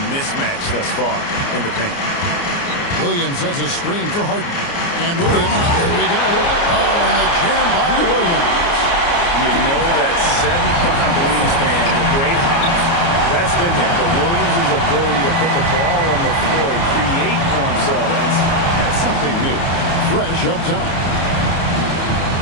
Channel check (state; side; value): late; right; 29 ms